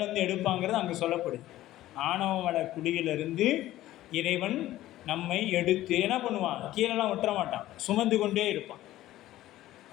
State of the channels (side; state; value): right; quieter; 14.9 dB